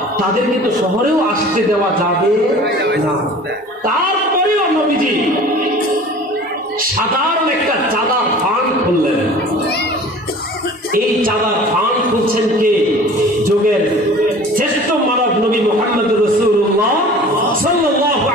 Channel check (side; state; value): both; normal; correlation 0.43